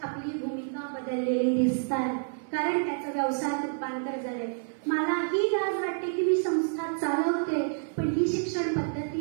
आपली भूमिका बदललेली दिसतात, कारण त्याचं व्यवसायात रूपांतर झालंय. मला ही लाज वाटते की मी संस्था चालवते, पण ही शिक्षण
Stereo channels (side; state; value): left; silent; 59 dB below the other